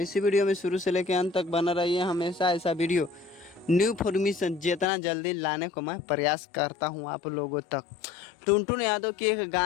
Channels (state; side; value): drops out; right; at 4.9 s